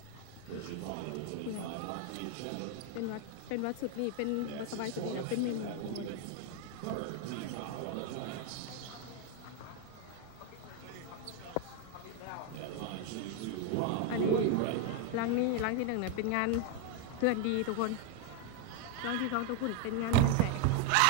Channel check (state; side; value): different; both; correlation 0.01